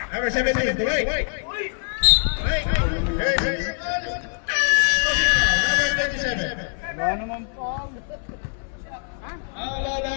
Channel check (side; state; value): right; silent; 61 dB below the other